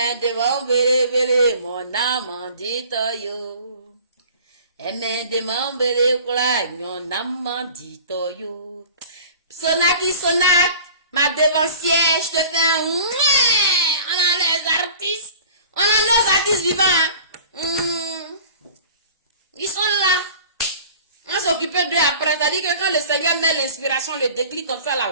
de mambele mon namandito yo, eme de mambele kwalanyo namandito yo. Sonaki Sonak, ma devancière, je te fais un mouais. On a les artistes. On a nos artistes vivants. Ils sont là. On s'occupe d'eux après. C'est-à-dire que quand le Seigneur met l'inspiration, le déclic comme ça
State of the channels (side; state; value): both; inverted; correlation -0.44